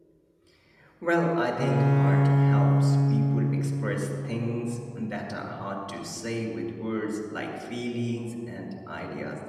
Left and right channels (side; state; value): both; identical; correlation 1.00